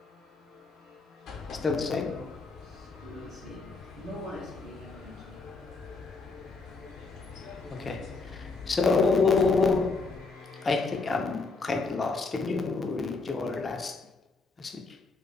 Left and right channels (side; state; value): right; quieter; 3.9 dB